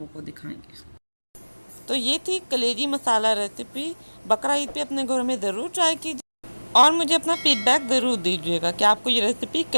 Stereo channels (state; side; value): inverted; both; correlation -1.00